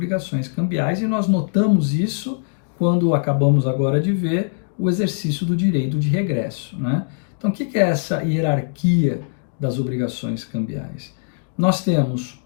cambiais e nós notamos isso quando acabamos agora de ver o exercício do direito de regresso, né? Então, o que é essa hierarquia das obrigações cambiais? Nós temos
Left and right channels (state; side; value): silent; right; digital silence